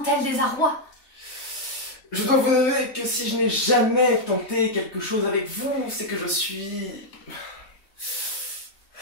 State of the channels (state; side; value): late; right; 3.3 ms